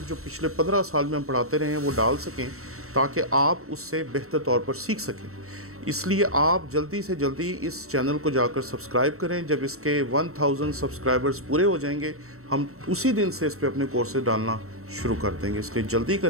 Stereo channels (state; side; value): late; left; 0.63 ms